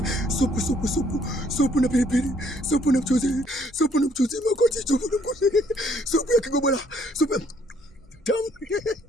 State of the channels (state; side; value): normal; both; correlation 0.65